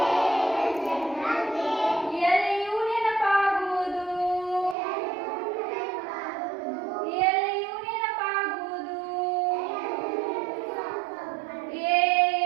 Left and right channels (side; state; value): left; drops out; at 4.8 s